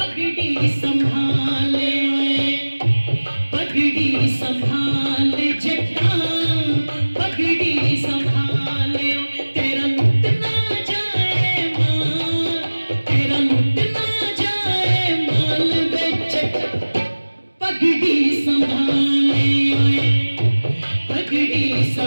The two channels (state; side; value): inverted; both; correlation -1.00